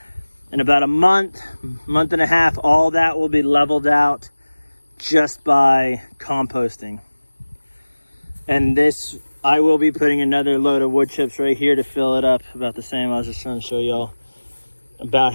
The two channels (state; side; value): inverted; both; correlation -1.00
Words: In about a month and a half, all that will be leveled out just by composting. And this, I will be putting another load of wood chips right here to fill it up about the same. I was just trying to show y'all about